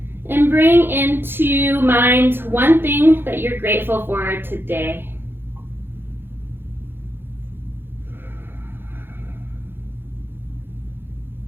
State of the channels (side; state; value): left; late; 0.10 ms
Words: And bring into mind one thing that you're grateful for today.